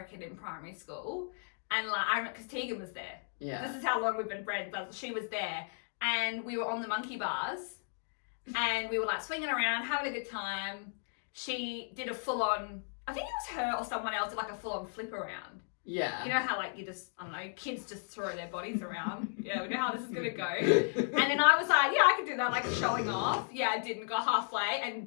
in primary school, and because Tegan was there. Yeah. This is how long we've been friends. But she was there, and we were on the monkey bars, and we were swinging around, having a good time. She did a full-on. I think it was her or someone else did a full-on flip around. Yeah. You know how like you just, I don't know, kids just throw their bodies around. Yeah, we know how this is gonna go. And then I was like, yeah, I could do that, like showing off. Yeah, I didn't go halfway and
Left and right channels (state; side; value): silent; right; digital silence